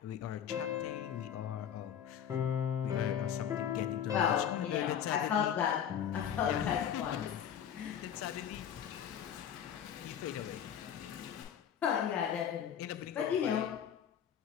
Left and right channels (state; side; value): quieter; right; 9.0 dB